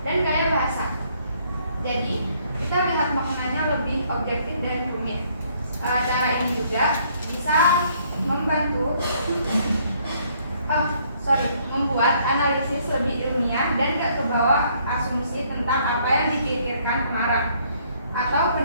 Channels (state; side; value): inverted; both; correlation -0.65